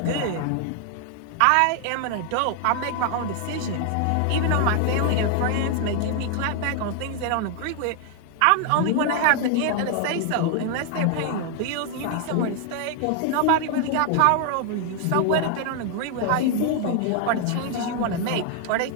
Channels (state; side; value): different; both; correlation 0.00